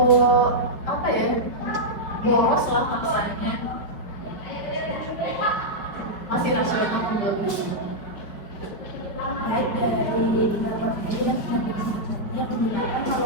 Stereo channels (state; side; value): late; right; 5.0 ms